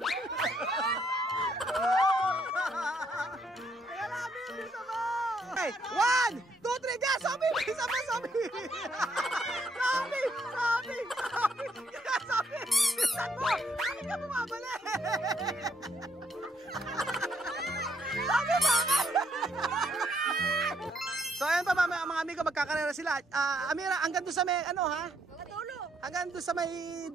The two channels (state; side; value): normal; both; correlation 0.72